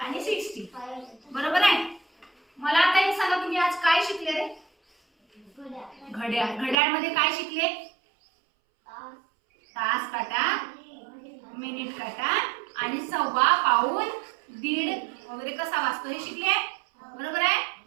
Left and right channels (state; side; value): drops out; left; at 6.8 s